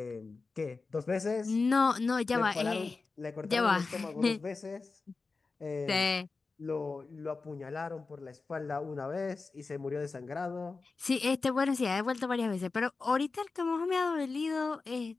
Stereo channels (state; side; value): quieter; right; 4.1 dB